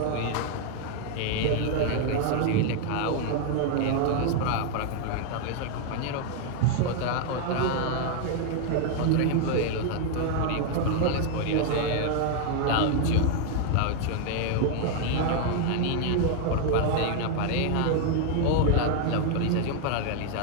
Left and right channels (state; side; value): different; both; correlation 0.00